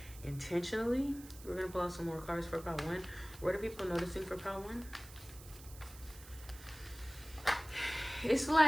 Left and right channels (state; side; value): noise; right; hiss, 18 dB below the sound